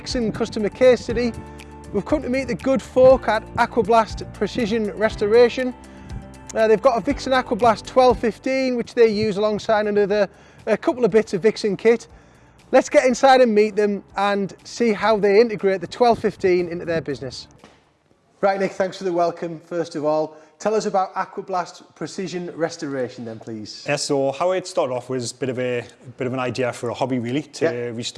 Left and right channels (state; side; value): identical; both; correlation 1.00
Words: customer case study. We've come to meet the good folk at Aquablast Precision Restoration. They've got a Vixen Aquablast 1215 which they use alongside a couple of bits of Vixen kit. Let's get inside and meet them and see how they integrate the 1215 into their business. Right, Nick, thanks for the welcome first of all. Tell us about Aquablast Precision Restoration then, please. Yeah, so how it started off was a bit of an idea for a hobby really, to